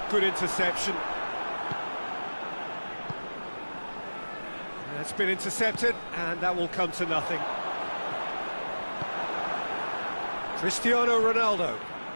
good interception. That's been intercepted, and that will come to nothing. Cristiano Ronaldo.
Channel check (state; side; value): inverted; both; correlation -1.00